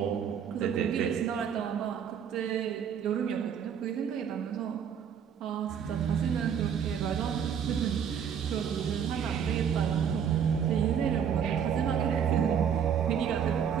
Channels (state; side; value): quieter; left; 8.0 dB